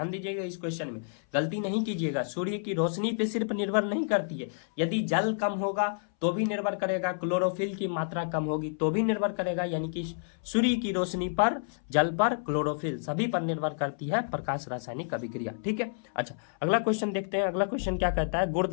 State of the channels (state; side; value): silent; right; 58 dB below the other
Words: दीजिएगा इस क्वेश्चन में, गलती नहीं कीजिएगा। सूर्य की रोशनी पे सिर्फ निर्भर नहीं करती है। यदि जल कम होगा तो भी निर्भर करेगा, क्लोरोफिल की मात्रा कम होगी तो भी निर्भर करेगा। यानी कि सूर्य की रोशनी पर, जल पर, क्लोरोफिल सभी पर निर्भर करती है प्रकाश रासायनिक अभिक्रिया। ठीक है, अच्छा अगला क्वेश्चन देखते हैं। अगला क्वेश्चन क्या कहता है?